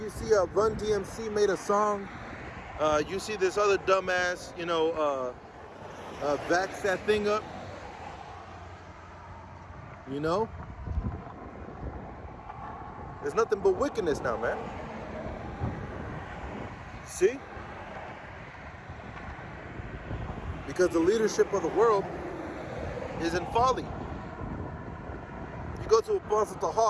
see Run DMC made a song. You see this other dumbass, you know, vax that thing up. You know? There's nothing but wickedness now, man. See? Because the leadership of the world is in folly. You go to Apostle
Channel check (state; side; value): identical; both; correlation 1.00